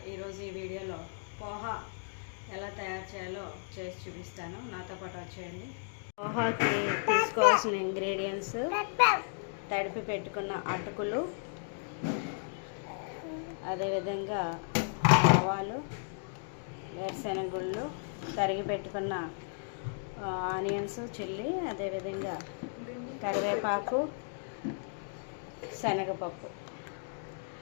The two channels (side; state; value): right; silent; digital silence